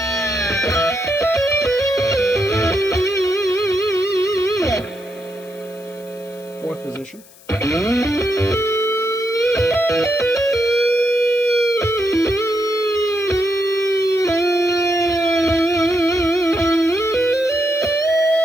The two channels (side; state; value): left; noise; hiss, 24 dB below the sound